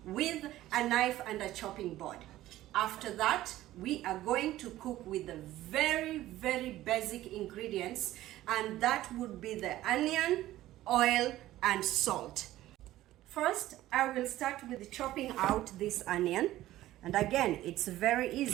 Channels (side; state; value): left; quieter; 15.0 dB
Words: with a knife and a chopping board. After that, we are going to cook with the very basic ingredients, and that would be the onion, oil, and salt. First, I will start with chopping out this onion, and again, it's very